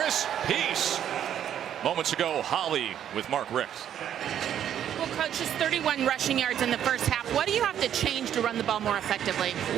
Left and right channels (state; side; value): quieter; left; 10.0 dB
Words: Peace. Moments ago, Holly with Mark Richt. Well, Coach, just 31 rushing yards in the first half. What do you have to change to run the ball more effectively?